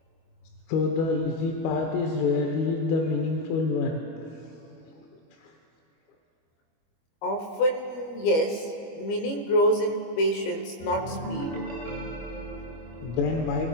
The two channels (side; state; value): right; late; 25 ms